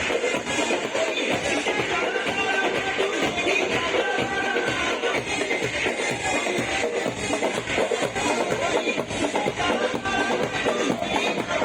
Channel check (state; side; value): identical; both; correlation 1.00